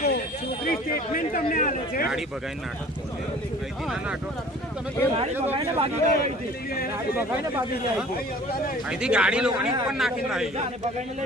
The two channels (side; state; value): both; normal; correlation 0.48